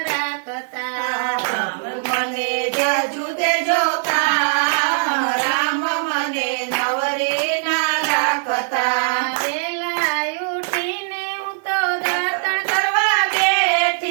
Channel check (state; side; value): silent; left; 56 dB below the other